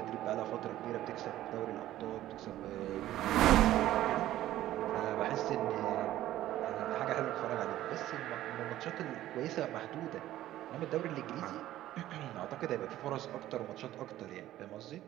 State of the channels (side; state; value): left; quieter; 14.0 dB